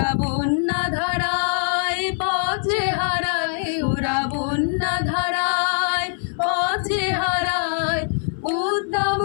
বন্যা ধারায় পথে হারায়, ওরা বন্যা ধারায় পথে হারায় উদ্দাম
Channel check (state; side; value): silent; right; 60 dB below the other